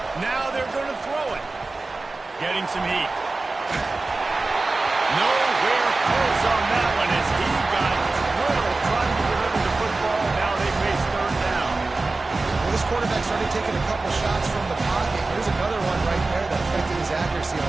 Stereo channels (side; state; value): left; quieter; 3.4 dB